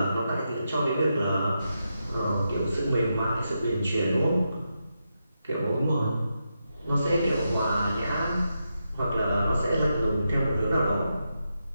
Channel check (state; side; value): inverted; both; correlation -0.86